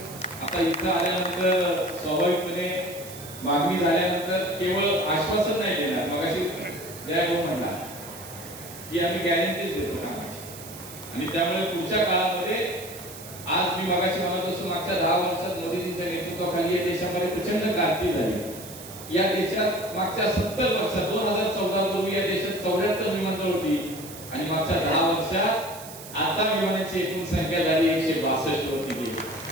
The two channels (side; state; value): right; noise; hiss, 14 dB below the sound